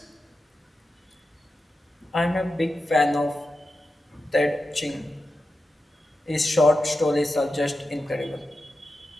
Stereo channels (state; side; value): normal; both; correlation 0.91